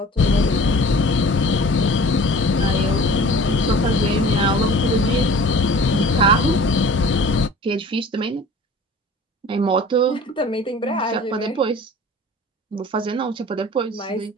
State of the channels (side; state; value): both; normal; correlation 0.44